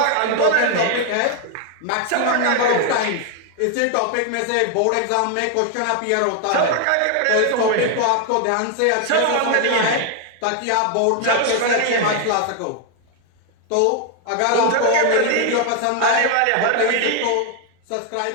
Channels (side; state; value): both; different; correlation 0.00